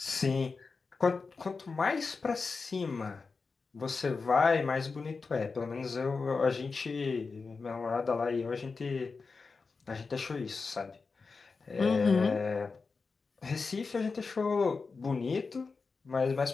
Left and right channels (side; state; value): right; quieter; 4.5 dB